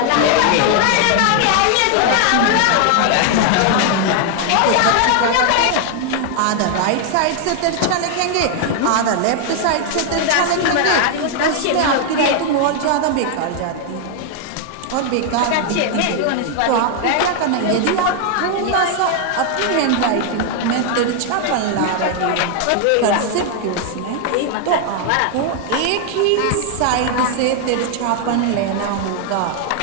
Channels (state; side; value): different; both; correlation 0.00